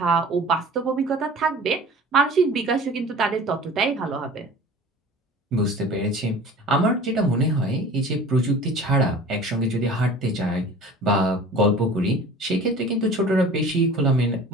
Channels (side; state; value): both; normal; correlation 0.42